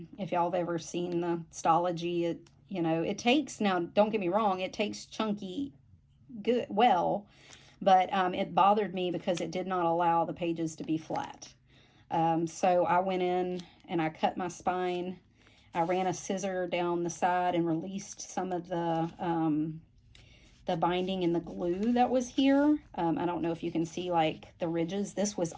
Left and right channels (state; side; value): identical; both; correlation 1.00